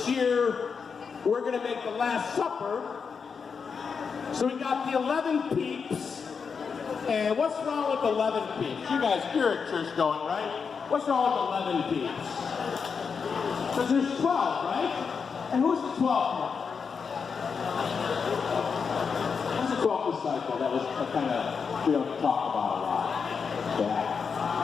year, we're going to make the Last Supper. So we got the 11 peeps. And what's wrong with 11 peeps? You guys, you're at church going, right? What's wrong with 11 peeps? Because there's 12, right? And who's the 12th one? Who's the 12th disciple? That was kind of, we don't talk about a lot. Yeah.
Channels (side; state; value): right; quieter; 5.8 dB